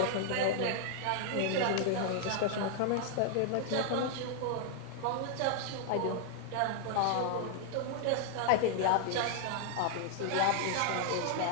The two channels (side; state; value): both; different; correlation 0.00